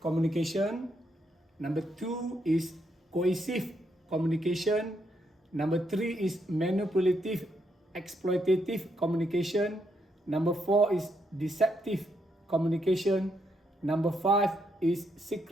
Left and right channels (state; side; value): normal; both; correlation 0.77